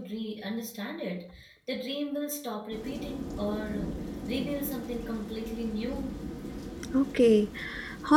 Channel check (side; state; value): both; identical; correlation 1.00